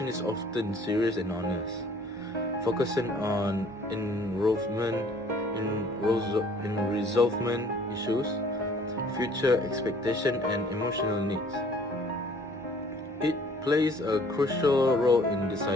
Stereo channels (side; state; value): both; normal; correlation 0.55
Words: is often serious and honest, focusing on resolvement issues, future expectation, and emotional needs. It plays a crucial role in